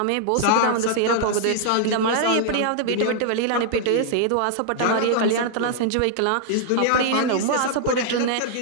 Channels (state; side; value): different; both; correlation -0.01